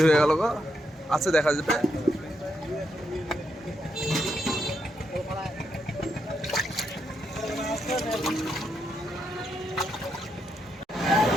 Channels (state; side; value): normal; both; correlation 0.80